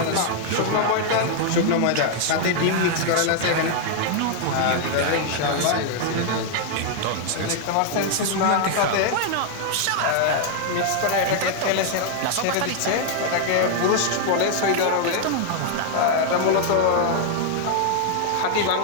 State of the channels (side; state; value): both; different; correlation 0.00